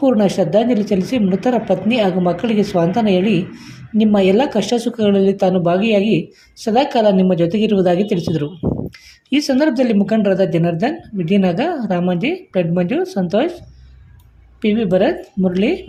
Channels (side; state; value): both; identical; correlation 1.00